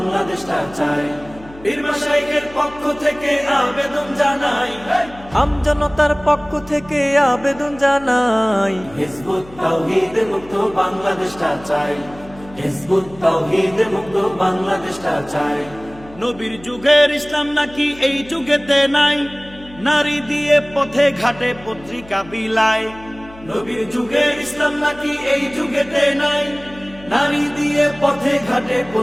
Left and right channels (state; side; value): noise; left; hum, 20 dB below the sound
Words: চাই। পীর মাশায়েখের পক্ষ থেকে আবেদন জানাই, আমজনতার পক্ষ থেকে আবেদন জানাই, হিজবুত তাওহীদ মুক্ত বাংলাদেশটা চাই, হিজবুত তাওহীদ মুক্ত বাংলাদেশটা চাই। নবীর যুগের ইসলাম নাকি এই যুগেতে নাই, নারী দিয়ে পথে ঘাটে পত্রিকা বিলায়। নবীর যুগের ইসলাম নাকি এই যুগেতে নাই, নারী দিয়ে পথে ঘাটে